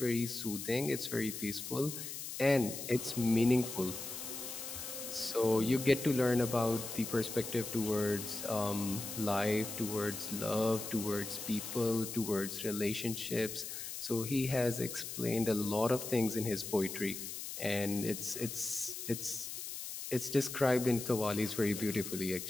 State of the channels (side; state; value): left; noise; hiss, 7 dB below the sound